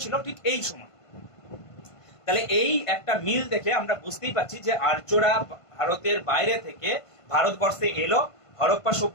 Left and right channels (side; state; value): right; late; 1.5 ms